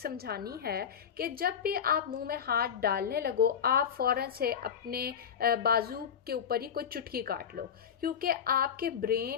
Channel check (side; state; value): right; quieter; 8.0 dB